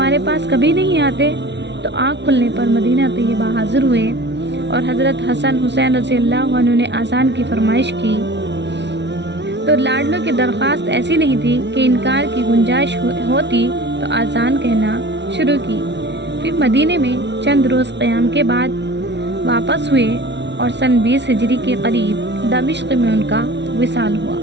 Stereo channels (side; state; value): left; late; 0.51 ms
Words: پاس کبھی نہیں آتے؟ تو آنکھ کھلنے پر مدینہ طیبہ حاضر ہوئے اور حضرت حسن حسین رضی اللہ عنہ نے آذان کی فرمائش کی تو لاڈلوں کی درخواست ایسی نہیں تھی کہ انکار کی گنجائش ہوتی تو آذان کہنا شروع کی۔ پھر مدینے میں چند روز قیام کے بعد واپس ہوئے اور سن 20 ہجری کے قریب دمشق میں ان کا وصال ہوا۔